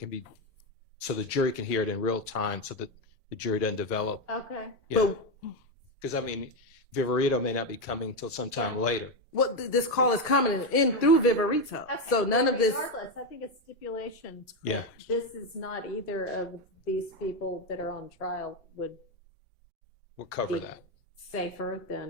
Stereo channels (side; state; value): both; normal; correlation 0.09